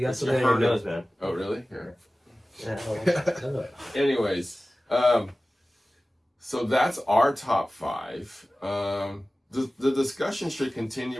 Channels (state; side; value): normal; both; correlation 0.97